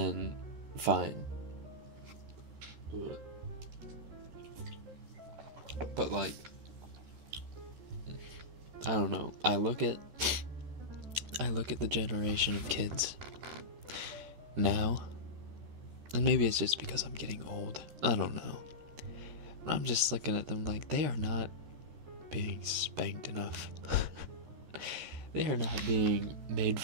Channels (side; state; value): left; late; 13 ms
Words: fine. But like, I don't know. I look at the generation of kids now, and maybe it's just because I'm getting old. I don't know. But I'm just looking at them like they are not being spanked enough. They are not being made